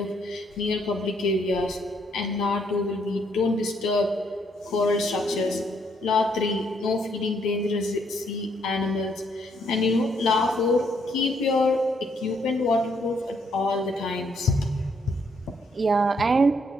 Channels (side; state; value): both; normal; correlation 0.71